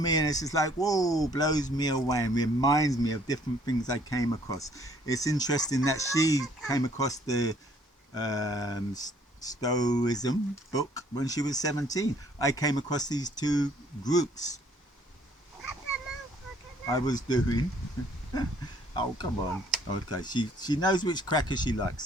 and it's just like, whoa, blows me away and reminds me of different things I came across. It's interesting that she came across the Stoicism book when she was 17. I came across these 2 groups I was doing. Oh, come on. Okay, she knows which cracker she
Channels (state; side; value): normal; both; correlation 0.61